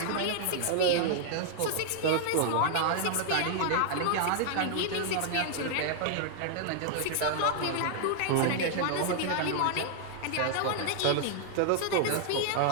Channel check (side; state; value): both; different; correlation 0.00